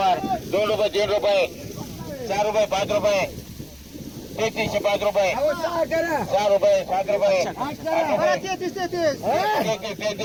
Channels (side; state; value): both; identical; correlation 1.00